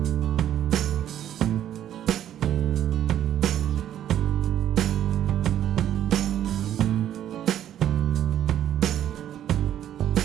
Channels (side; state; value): left; quieter; 11.1 dB